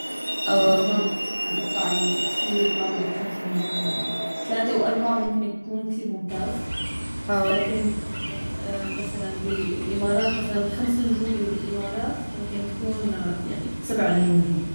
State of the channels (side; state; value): both; inverted; correlation -1.00